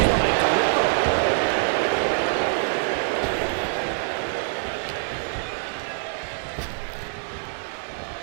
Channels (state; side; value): silent; left; digital silence